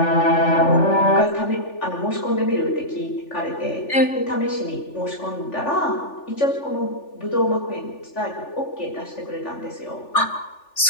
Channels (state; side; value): late; right; 3.4 ms